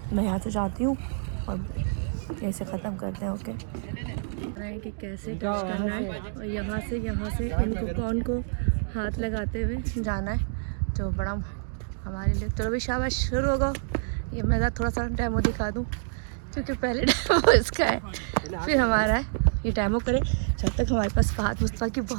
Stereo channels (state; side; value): silent; left; digital silence